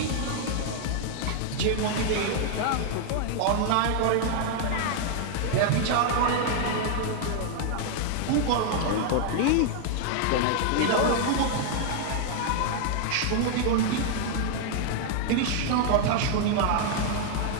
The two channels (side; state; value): both; different; correlation 0.00